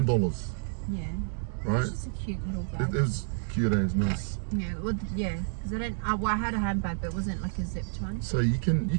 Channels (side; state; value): left; silent; digital silence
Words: yeah. right? It's just a cute little It bag. was cute, it's nice. Yeah, well, yeah, because I had a handbag, but it wasn't like a zipped one. So you can